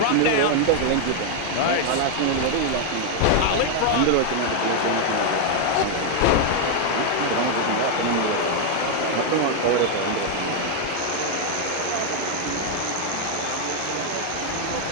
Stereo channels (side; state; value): both; different; correlation 0.00